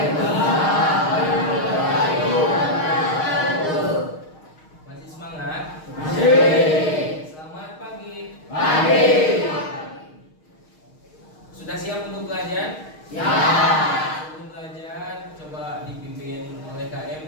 warahmatullahi wabarakatuh. Masih semangat? Masih. Selamat pagi. Pagi. Sudah siap untuk belajar? Siap. Sebelum belajar, coba dipimpin oleh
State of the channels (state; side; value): late; right; 6.4 ms